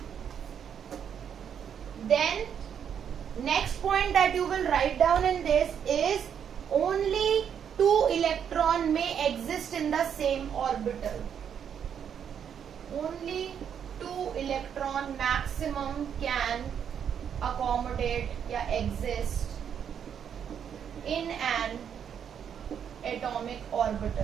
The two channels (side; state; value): left; quieter; 8.2 dB